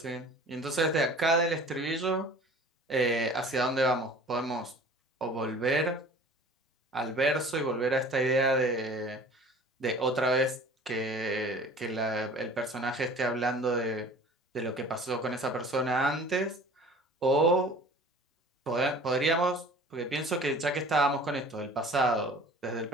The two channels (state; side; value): normal; both; correlation 0.45